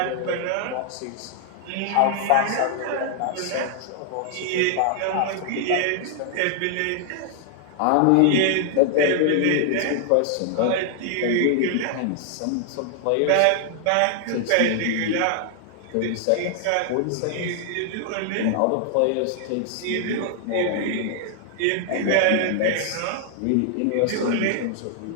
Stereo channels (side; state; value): both; different; correlation 0.00